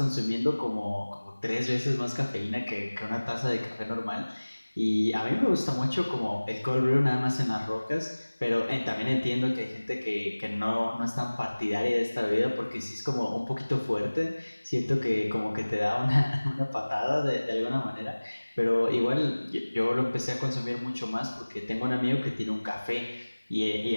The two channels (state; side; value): inverted; both; correlation -1.00